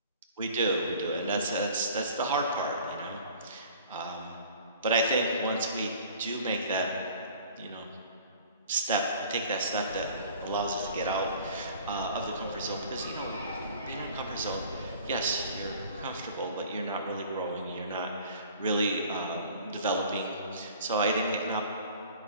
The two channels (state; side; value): inverted; both; correlation -0.47